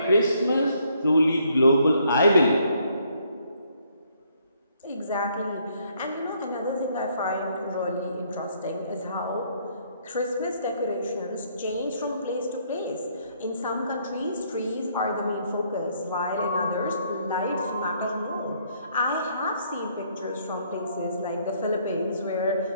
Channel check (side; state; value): both; inverted; correlation -0.68